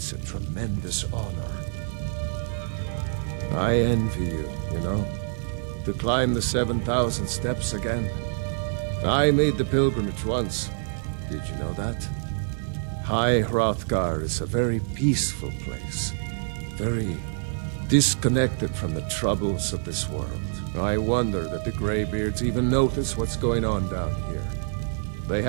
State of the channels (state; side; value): silent; left; digital silence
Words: a tremendous honor. I envy you, you know, to climb the 7,000 steps again. I made the pilgrimage once. Did you know that? High Hrothgar is a very peaceful place. Very disconnected from the troubles of this world. I wonder that the Greybeards even notice what's going on down here. They